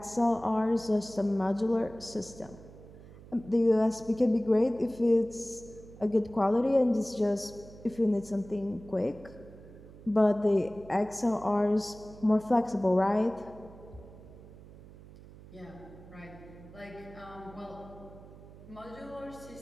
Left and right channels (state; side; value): noise; right; hum, 19 dB below the sound